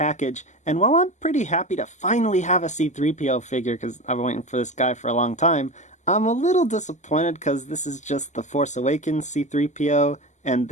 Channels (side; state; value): right; late; 0.34 ms